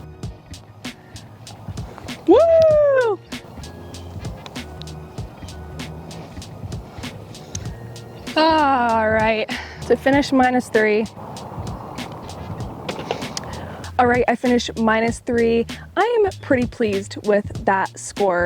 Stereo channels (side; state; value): both; identical; correlation 1.00